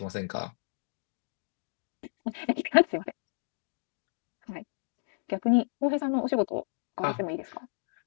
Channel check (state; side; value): silent; right; digital silence